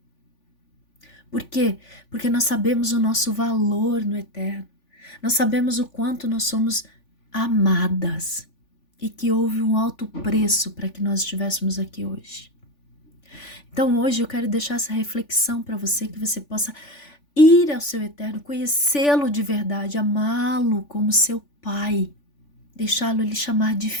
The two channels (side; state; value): right; late; 3.5 ms